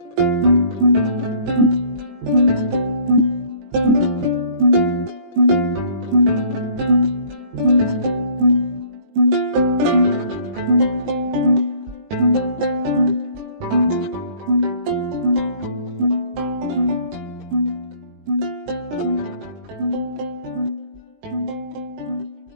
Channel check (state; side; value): late; left; 19 ms